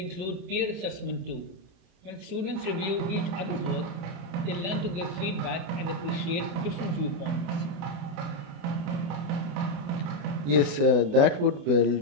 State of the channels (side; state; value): left; late; 28 ms